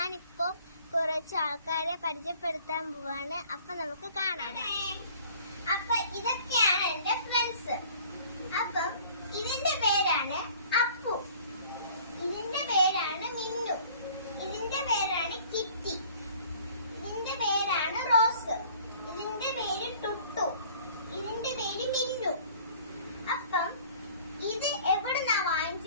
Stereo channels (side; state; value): both; inverted; correlation -0.51